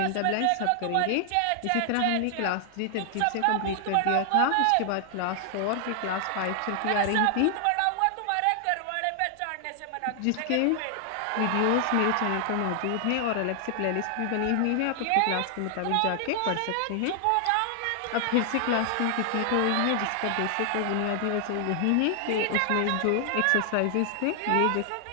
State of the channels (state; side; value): different; both; correlation 0.00